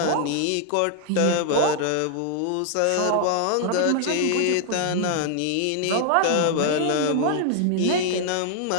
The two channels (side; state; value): both; different; correlation 0.00